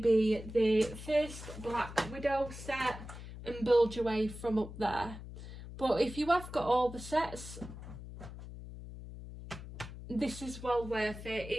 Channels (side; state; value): left; noise; hum, 12 dB below the sound